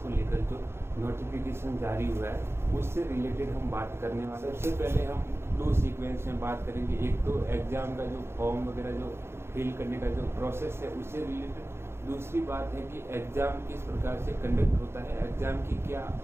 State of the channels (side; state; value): left; late; 0.12 ms